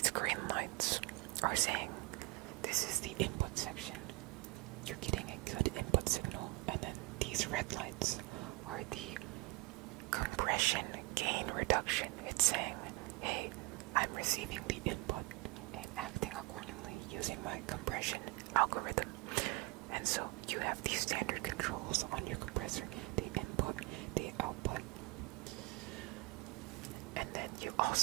green lights are saying this is the input section. You're getting a good input signal, and then these red lights are the compression gain reduction. It's saying, hey, I'm receiving the input and acting accordingly using my compression algorithm. And so you have these standard controls on your compressor, the input, the output. And then you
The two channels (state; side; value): quieter; left; 24.5 dB